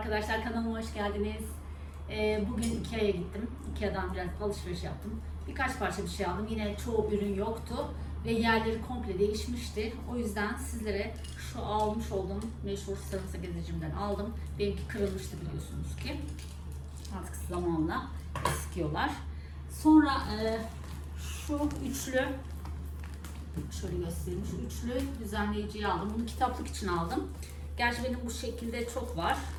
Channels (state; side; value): identical; both; correlation 1.00